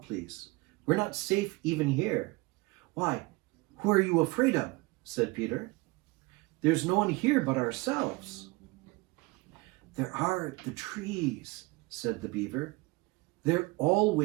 please. We're not safe even here." "Why, who are you afraid of?" said Peter. "There's no one here but ourselves." "There are the trees," said the beaver. "They're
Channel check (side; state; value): left; quieter; 23.8 dB